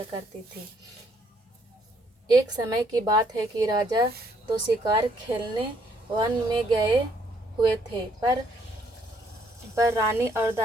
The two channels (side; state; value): both; normal; correlation 0.68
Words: करती थी। एक समय की बात है कि राजा तो शिकार खेलने वन में गए हुए थे, पर रानी और